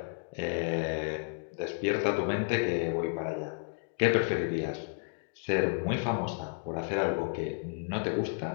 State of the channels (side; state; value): right; silent; 56 dB below the other